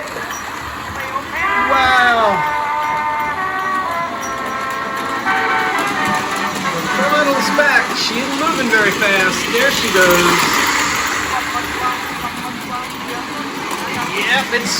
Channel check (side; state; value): both; identical; correlation 1.00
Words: Wow. The little's back. She isn't moving very fast. There she goes. Yep, it's